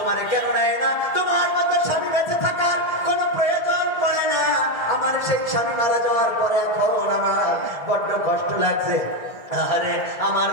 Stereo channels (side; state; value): right; late; 1.8 ms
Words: কেন নেয় না, তোমার মতো স্বামী বেঁচে থাকার কোনো প্রয়োজন পড়ে না। আমার সেই স্বামী মারা যাওয়ার পরে এখন আমার বড্ড কষ্ট লাগছে। আরে আমার